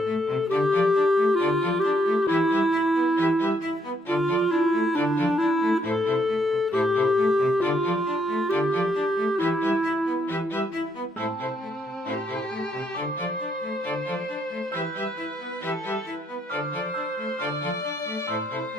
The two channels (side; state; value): both; normal; correlation 0.73